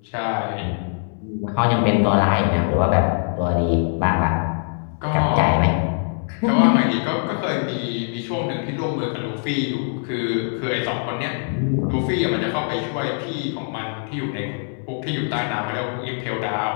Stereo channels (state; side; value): silent; right; 60 dB below the other